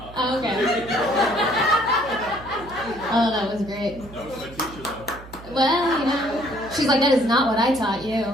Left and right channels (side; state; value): right; noise; hum, 17 dB below the sound